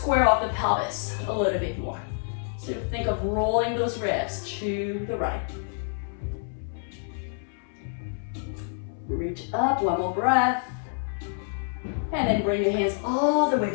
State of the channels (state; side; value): silent; right; 60 dB below the other